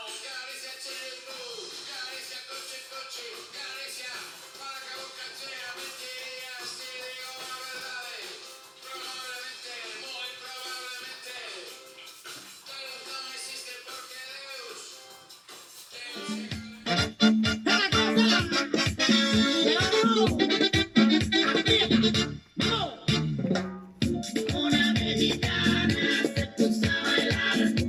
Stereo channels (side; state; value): both; identical; correlation 1.00